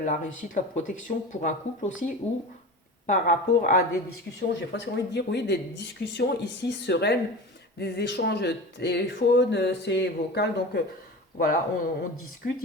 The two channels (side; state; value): both; normal; correlation 0.32